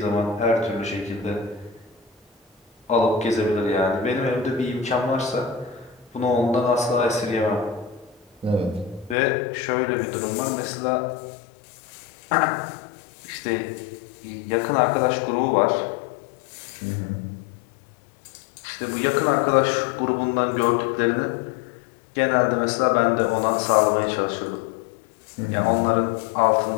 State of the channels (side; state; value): right; drops out; at 9.2 s